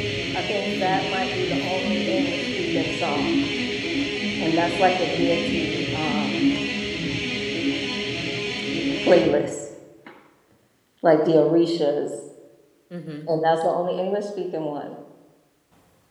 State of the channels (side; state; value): both; identical; correlation 1.00